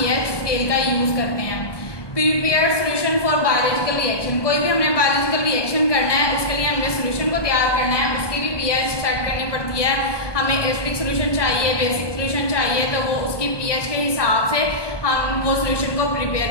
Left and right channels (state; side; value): late; right; 1.2 ms